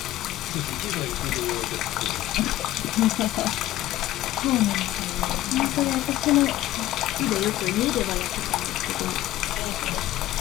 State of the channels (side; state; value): right; quieter; 15.0 dB